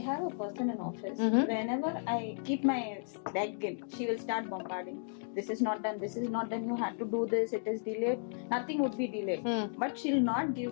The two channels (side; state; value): right; silent; digital silence